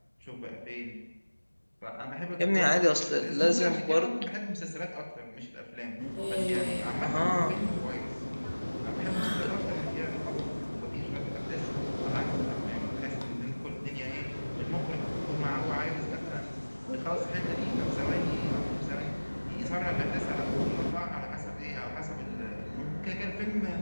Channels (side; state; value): both; inverted; correlation -1.00